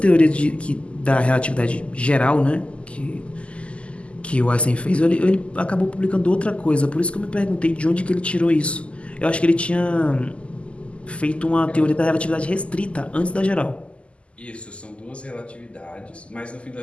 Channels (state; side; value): late; right; 0.056 ms